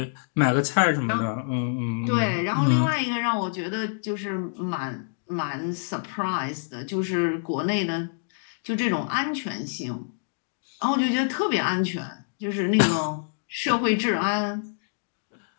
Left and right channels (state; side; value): silent; right; digital silence